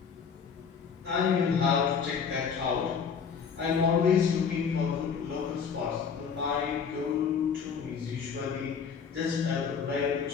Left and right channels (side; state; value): right; quieter; 6.4 dB